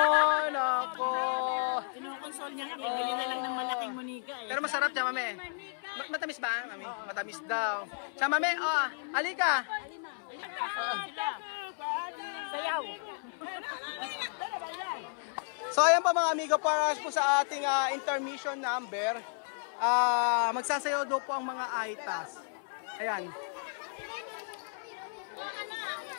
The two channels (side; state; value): right; silent; 56 dB below the other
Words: nako. Kinukonsol niya nga, bibili na lang ng malaking munika eh. Pero masarap siya, mami. Matamis ba, mami? Matamis daw. Siya, mami, alika. Sayaw. So, ayan pa mga amigo, para po sa ating intermission number, magsasayaw daw po ang mga aitas. Ayan.